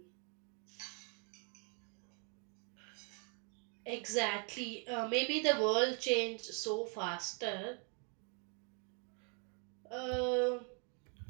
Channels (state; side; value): quieter; left; 36.8 dB